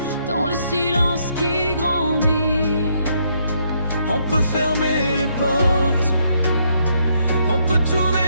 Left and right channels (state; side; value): inverted; both; correlation -0.73